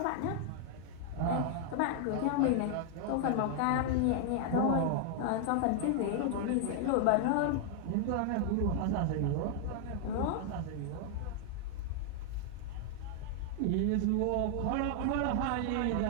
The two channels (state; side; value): different; both; correlation 0.00